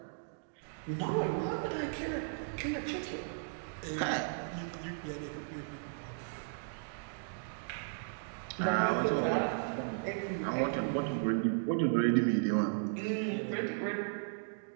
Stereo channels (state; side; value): silent; left; digital silence